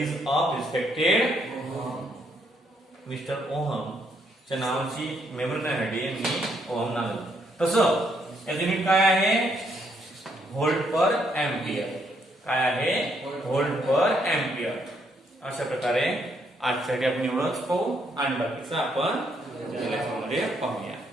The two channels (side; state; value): both; normal; correlation 0.73